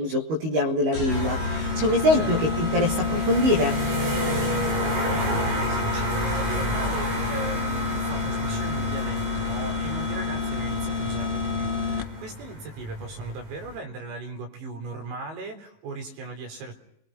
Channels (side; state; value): left; late; 19 ms